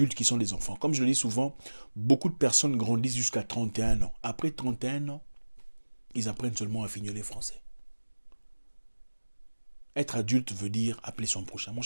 qui sont des enfants. Comme je le dis souvent, beaucoup de personnes grandissent jusqu'à 31 ans. Après 31 ans, ils apprennent seulement à fignoler français. Être adulte veut dire appeler son prochain. Mon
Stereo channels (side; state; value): both; inverted; correlation -1.00